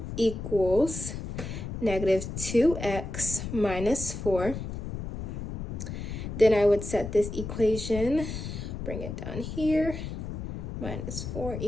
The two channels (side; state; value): left; noise; rumble, 6 dB below the sound